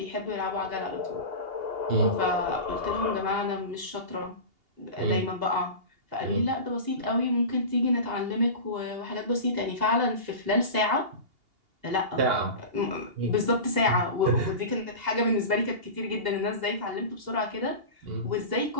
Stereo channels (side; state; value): left; late; 2.8 ms